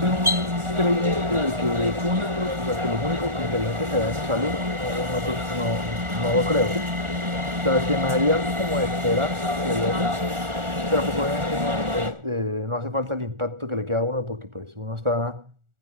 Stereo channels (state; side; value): late; left; 1.4 ms